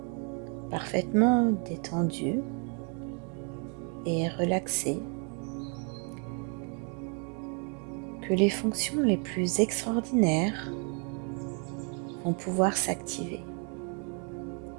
parfaitement détendu et relaxé, que les fonctions les plus extraordinaires vont pouvoir s'activer.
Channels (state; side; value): quieter; left; 38.4 dB